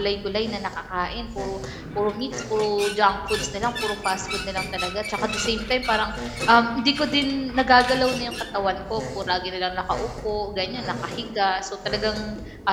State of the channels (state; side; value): identical; both; correlation 1.00